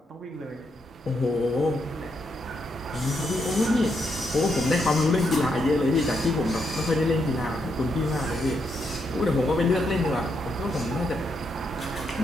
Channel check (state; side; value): normal; both; correlation 0.79